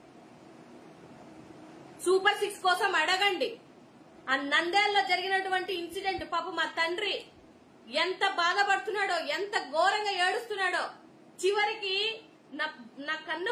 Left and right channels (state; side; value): identical; both; correlation 1.00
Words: సూపర్ 6 కోసం అడగండి. ఆ నంద్యాలలో జరిగినటువంటి ఇన్సిడెంట్, పాప మా తండ్రి ఎంత బాధపడుతున్నాడో, ఎంత ఘోరంగా ఏడుస్తున్నాడో. చివరికి నా కన్న